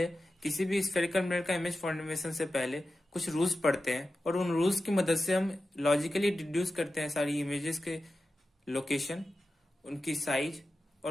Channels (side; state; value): both; normal; correlation 0.92